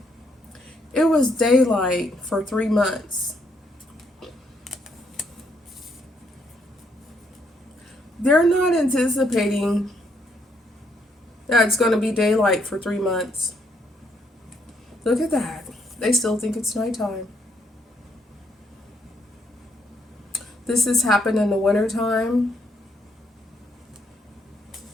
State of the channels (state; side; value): normal; both; correlation 0.73